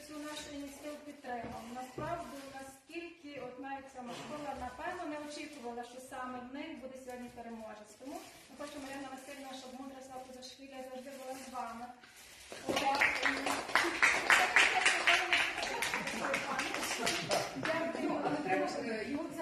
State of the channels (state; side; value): identical; both; correlation 1.00